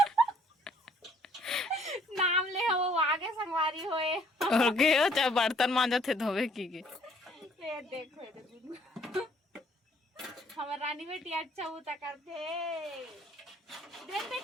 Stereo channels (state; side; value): normal; both; correlation 0.61